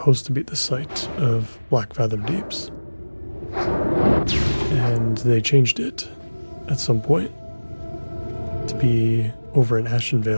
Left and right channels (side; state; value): both; inverted; correlation -1.00